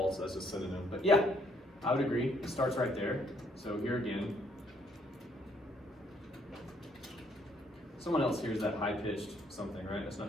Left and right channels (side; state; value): both; normal; correlation 0.67